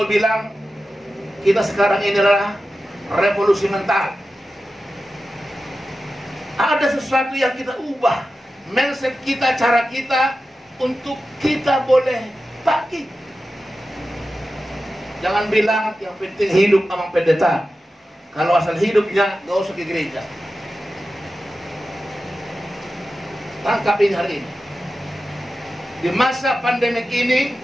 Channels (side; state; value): both; normal; correlation 0.93